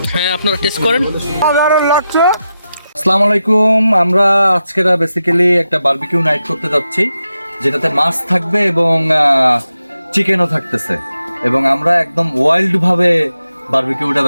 হ্যাঁ আপনারা টেস্ট করেন। আসসালামু আলাইকুম। আমরা আজকে বেসিক্যালি একটা বারবিকিউ নাইট করতে যাচ্ছি, যেটাতে মাছ থাকবে এবং চিকেনও থাকতেছে, এবং আমরা একদম ওয়াইল্ড ভাবে বারবিকিউটা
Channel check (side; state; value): both; inverted; correlation -0.89